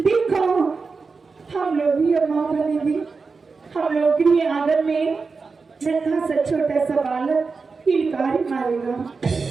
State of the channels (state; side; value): quieter; left; 4.6 dB